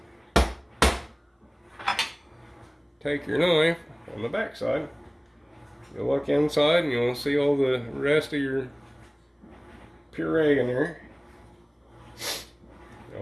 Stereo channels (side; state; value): both; identical; correlation 1.00